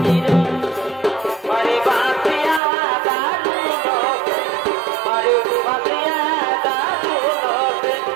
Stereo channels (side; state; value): left; drops out; at 2.6 s